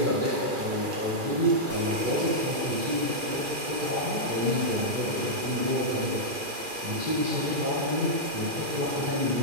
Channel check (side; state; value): left; late; 2.4 ms